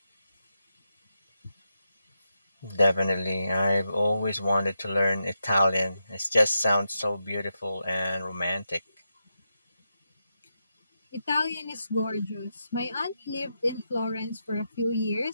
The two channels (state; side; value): inverted; both; correlation -0.86